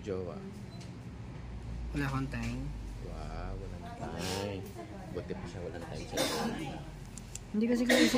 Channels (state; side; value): identical; both; correlation 1.00